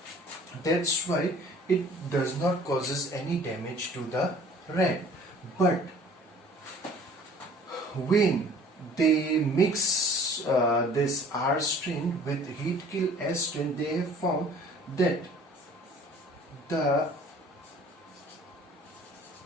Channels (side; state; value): both; normal; correlation 0.51